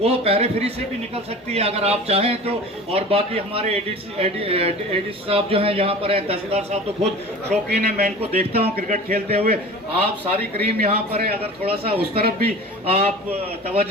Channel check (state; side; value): normal; both; correlation 0.38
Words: पेरिफेरी से भी निकल सकती है अगर आप चाहें तो। और बाकी हमारे एडीसी साहब जो हैं यहाँ पर है, तहसीलदार साहब तो खुद शौकीन है, मैं इनको देखता हूँ क्रिकेट खेलते हुए। आप सारी क्रीम यहाँ पर है, अगर थोड़ा सा उस तरफ भी आप